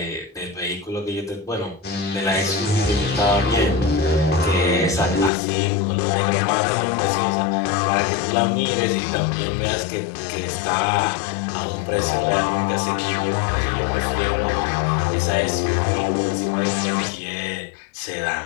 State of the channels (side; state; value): right; drops out; at 5.3 s